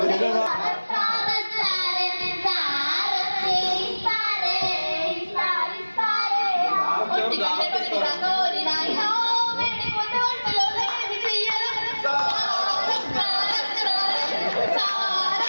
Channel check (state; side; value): inverted; both; correlation -1.00